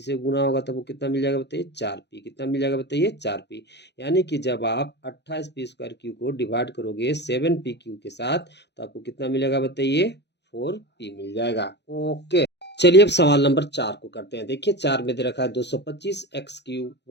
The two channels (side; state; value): right; late; 0.50 ms